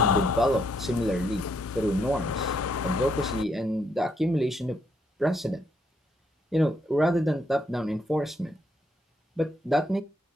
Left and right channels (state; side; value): normal; both; correlation 0.74